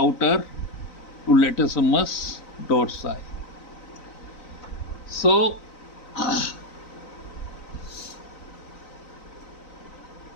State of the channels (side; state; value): right; late; 3.9 ms